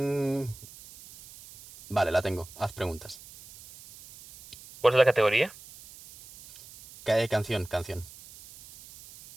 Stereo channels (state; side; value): noise; right; hiss, 19 dB below the sound